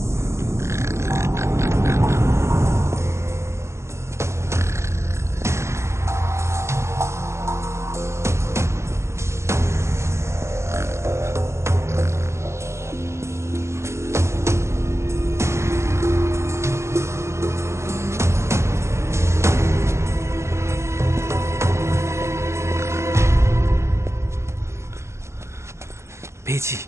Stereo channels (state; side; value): late; left; 0.13 ms